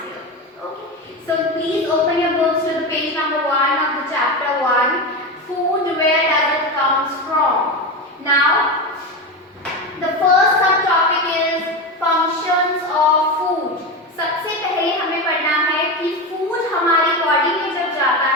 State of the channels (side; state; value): both; normal; correlation 0.19